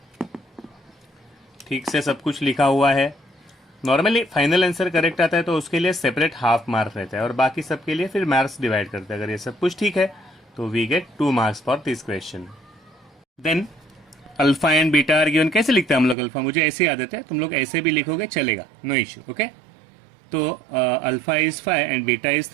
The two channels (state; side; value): drops out; left; at 16.2 s